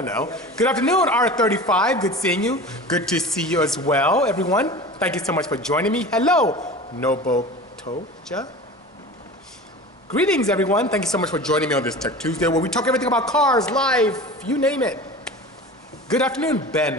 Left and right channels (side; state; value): both; normal; correlation 0.35